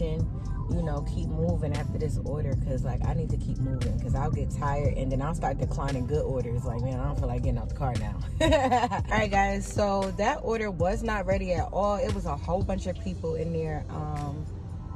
You know, keep moving after this order, because like I need to keep moving, because I'll get tired and then I'll start declining good orders. Like, man, I don't feel like getting out the car now. All right guys, so that order was not ready at all. It was a whole bunch of people in there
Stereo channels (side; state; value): both; identical; correlation 1.00